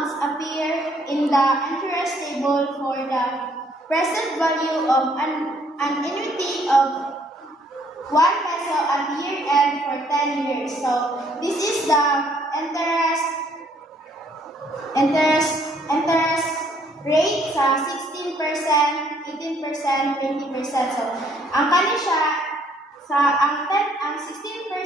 appear in the interest table for the present value of an annuity of 1 peso at year-end for 10 years. So, this is the interest rate sa 16%, 18%, 20%. So, ang kani siya ang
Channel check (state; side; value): normal; both; correlation 0.65